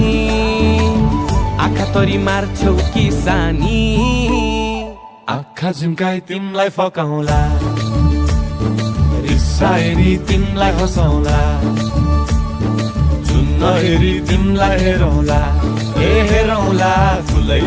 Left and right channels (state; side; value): identical; both; correlation 1.00